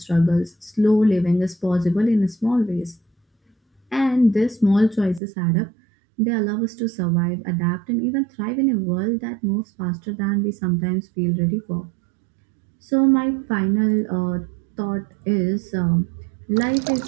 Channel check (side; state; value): left; drops out; at 5.2 s